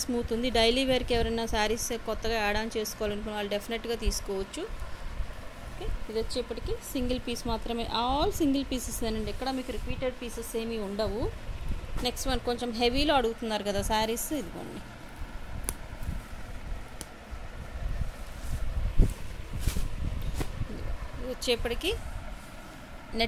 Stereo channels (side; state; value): both; identical; correlation 1.00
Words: స్మూత్ ఉంది. డైలీ వేర్కి ఎవరైనా శారీస్ కొత్తగా యాడ్ ఆన్ చేసుకోవాలనుకున్న వాళ్ళు డెఫినెట్గా తీసుకోవచ్చు. ఓకే, ఇది వచ్చేప్పటికి సింగిల్ పీస్ మాత్రమే, ఆల్ సింగిల్ పీసెస్ అండి, ఎక్కడ మీకు రిపీటెడ్ పీసెస్ ఏమీ ఉండవు. నెక్స్ట్ వన్ కొంచెం హెవీలో అడుగుతున్నారు కదా శారీస్, ఇదిగోండి. ఇది వచ్చేప్పటికి